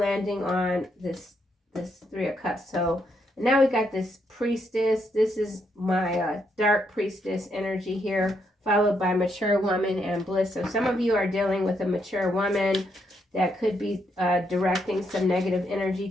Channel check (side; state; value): both; normal; correlation 0.77